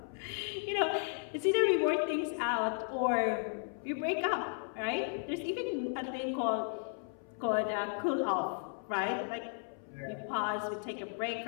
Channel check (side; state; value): right; silent; 55 dB below the other